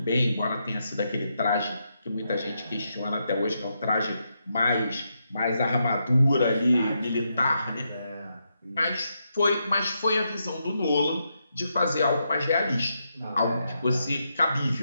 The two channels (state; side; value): inverted; both; correlation -0.82